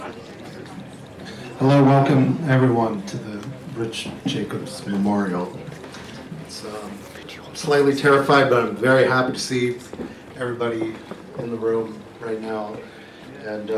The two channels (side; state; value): both; identical; correlation 1.00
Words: Hello, welcome everyone to the Rich Jacobs Memorial. I'm slightly terrified, but I'm very happy to see everybody in the room right now. And